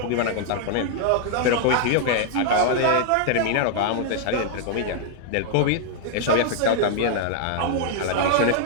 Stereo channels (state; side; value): different; both; correlation -0.01